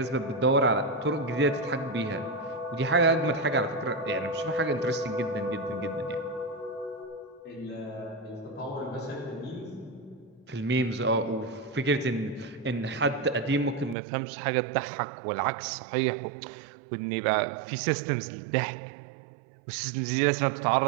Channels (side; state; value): left; drops out; at 14.0 s